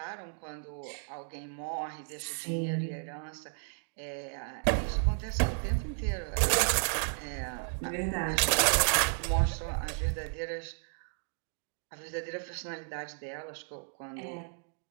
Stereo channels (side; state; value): left; silent; 56 dB below the other